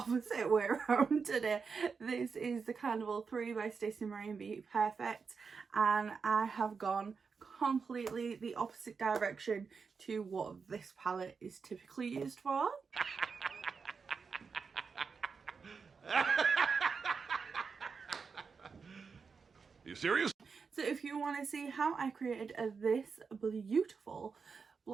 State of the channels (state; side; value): quieter; left; 5.4 dB